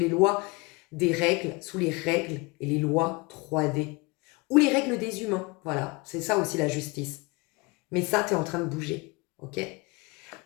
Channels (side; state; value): right; quieter; 26.2 dB